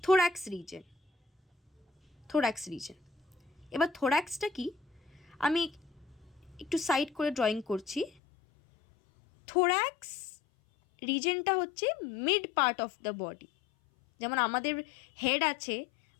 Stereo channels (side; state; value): right; drops out; at 8.1 s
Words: থোরাক্স রিজন। এবার থোরাক্সটা কি আমি একটু সাইড করে ড্রয়িং করছি। থোরাক্স রিজনটা হচ্ছে mid part of the body. যেমন আমাদের হেড আছে,